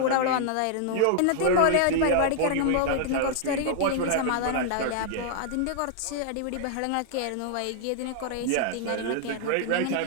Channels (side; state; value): both; different; correlation 0.00